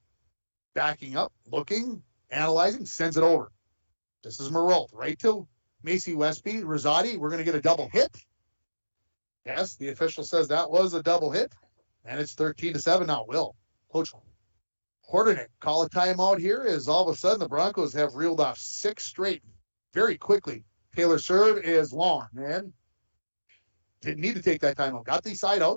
backing up, looking, analyzing, sends it over. This is Marolt, right to Macy Westby. Rosati, we're going to get a double hit. Yes, the official says that was a double hit. And it's 13-7 now. Will Coach Hordenek call a timeout here as all of a sudden the Broncos have reeled off 6 straight very quickly. Taylor serve is long, man. Didn't need to take that timeout. Got the side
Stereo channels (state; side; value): inverted; both; correlation -1.00